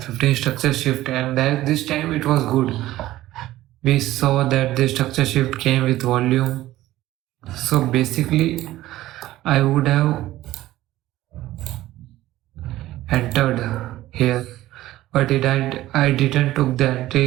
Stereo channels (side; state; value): left; quieter; 15.6 dB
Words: structure shift, and that this time it was good. We saw that the structure shift came with volume. So basically I would have entered here, but I didn't took the